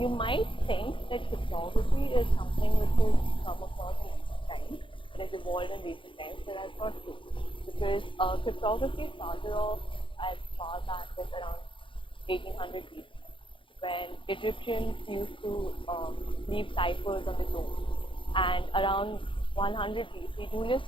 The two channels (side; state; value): right; late; 0.25 ms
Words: might think that cryptography is something which has come across in recent times, it has evolved in recent times, but that's not true. Because cryptography started off as far back as around 1800 BC, when Egyptians used to leave ciphers on the tomb. And around 100 BC, Julius